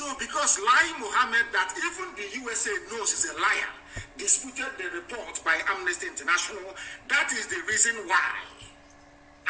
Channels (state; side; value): identical; both; correlation 1.00